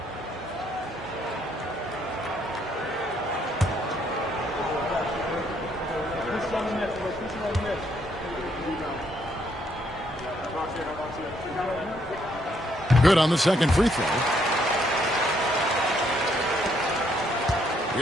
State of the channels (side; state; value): both; normal; correlation 0.71